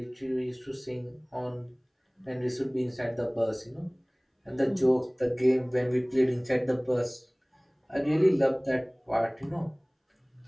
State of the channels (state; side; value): identical; both; correlation 1.00